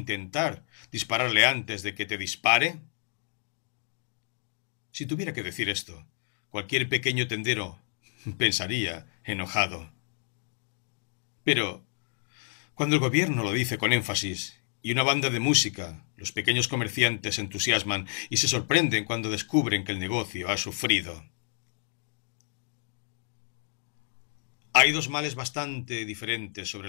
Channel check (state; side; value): silent; right; 58 dB below the other